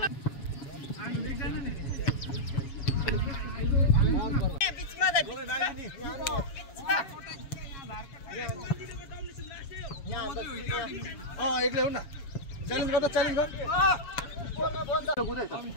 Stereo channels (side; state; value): right; late; 7.2 ms